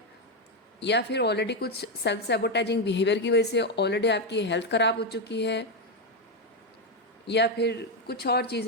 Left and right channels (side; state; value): both; normal; correlation 0.06